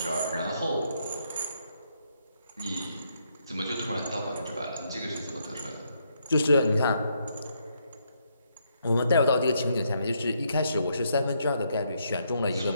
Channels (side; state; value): both; inverted; correlation -0.75